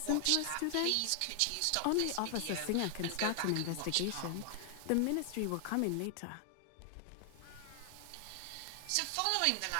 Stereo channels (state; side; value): different; both; correlation 0.00